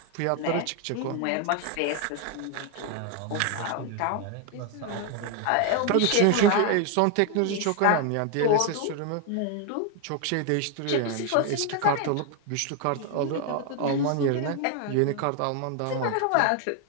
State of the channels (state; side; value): different; both; correlation 0.01